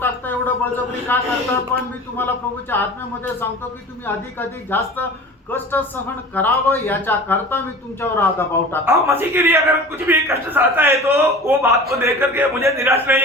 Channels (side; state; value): both; normal; correlation 0.38